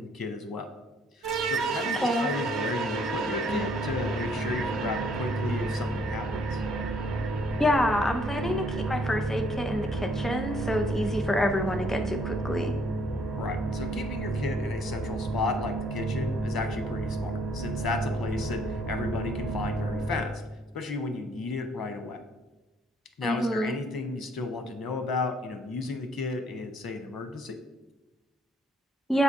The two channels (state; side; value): normal; both; correlation 0.65